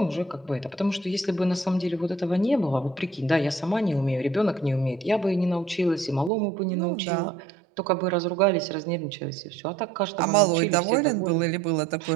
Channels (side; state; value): left; drops out; at 6.3 s